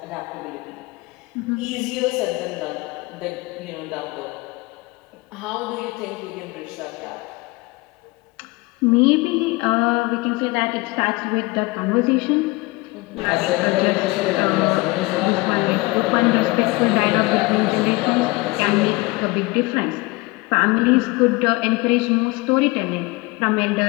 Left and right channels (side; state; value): right; quieter; 23.3 dB